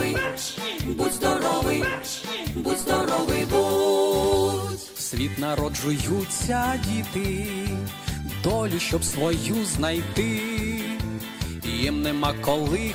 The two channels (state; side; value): identical; both; correlation 1.00